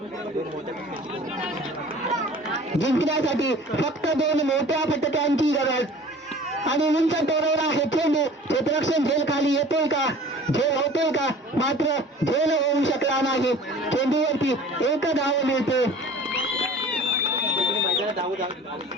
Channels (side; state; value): both; normal; correlation 0.45